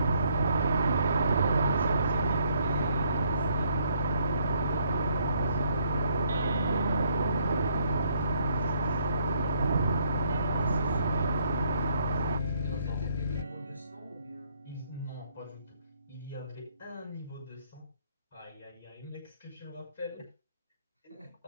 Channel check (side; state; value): both; inverted; correlation -0.68